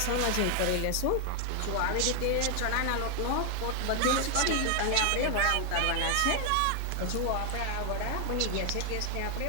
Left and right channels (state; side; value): different; both; correlation 0.00